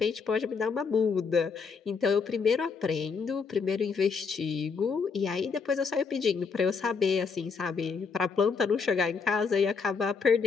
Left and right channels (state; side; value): quieter; right; 5.3 dB